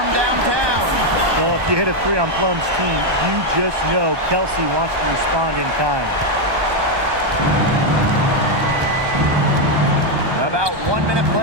downtown. Well, if you hit a 3 on Plum's team, you just know Kelsey wants to respond in kind. About 1 minute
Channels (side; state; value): left; late; 1.2 ms